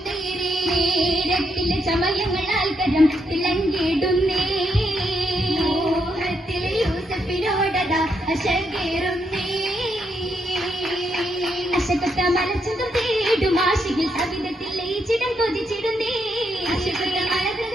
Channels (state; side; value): normal; both; correlation 0.79